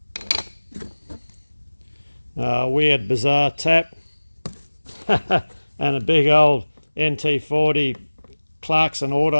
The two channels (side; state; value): both; inverted; correlation -1.00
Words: Weird bizarre tap and a big old NT40 Clarkson